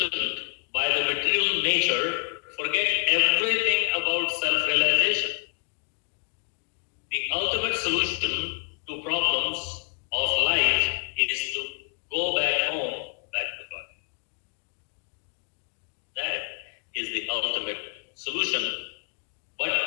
by the material nature, forget everything about self-realization. The ultimate solution to problems of life is to go back home, back to God. That is the ultimate solution, but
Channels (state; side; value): quieter; right; 39.0 dB